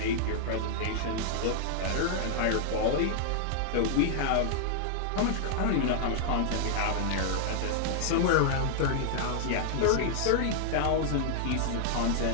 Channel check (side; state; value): both; different; correlation -0.01